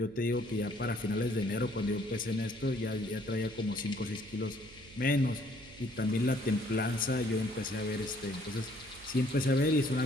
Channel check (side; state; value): right; noise; hum, 21 dB below the sound